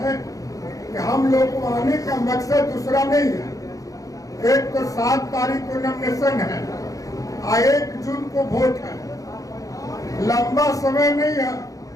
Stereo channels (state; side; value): late; right; 0.17 ms